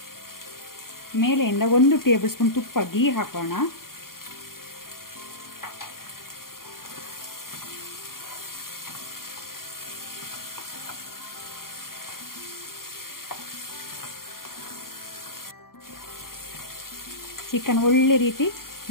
ಮೇಲೆಯಿಂದ 1 ಟೇಬಲ್ ಸ್ಪೂನ್ ತುಪ್ಪ ಗೀ ಹಾಕೋಣ. ಚಿಕನ್ ಒಳ್ಳೆ ರೀತಿ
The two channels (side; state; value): right; late; 0.92 ms